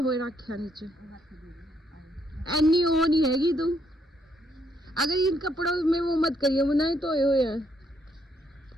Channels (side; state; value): both; normal; correlation 0.73